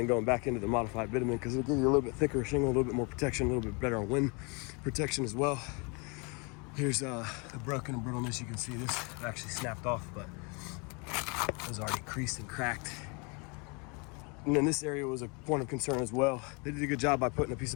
going back into the modified bitumen, because it'll give you a little bit thicker shingle, a little bit more protection, a little bit better on wind protection as well. Here's the broken and brittleness. You can see this actually snapped off, but it was already creased and cracked. And then this area was a point of concern as well. They did a good job by putting a piece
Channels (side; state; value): right; quieter; 32.0 dB